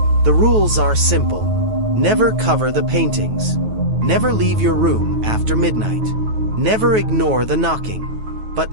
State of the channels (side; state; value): left; late; 9.3 ms